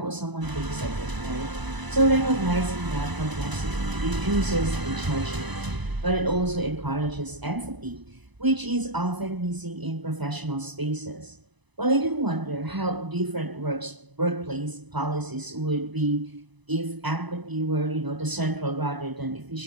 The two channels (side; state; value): left; late; 1.0 ms